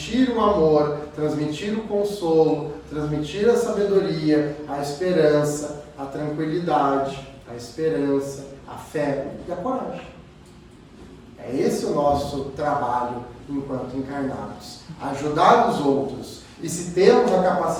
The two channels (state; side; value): identical; both; correlation 1.00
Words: o amor, transmitir o consolo, transmitir a sabedoria, a esperança, a tranquilidade, a esperança, a fé e a coragem. É esse o nosso trabalho enquanto encarnados. Ajudar os outros. E se temos a